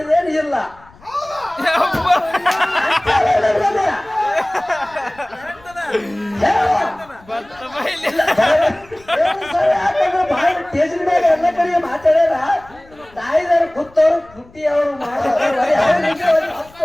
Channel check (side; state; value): left; noise; rumble, 26 dB below the sound